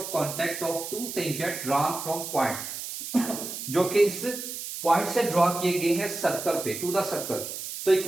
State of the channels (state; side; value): noise; right; hiss, 7 dB below the sound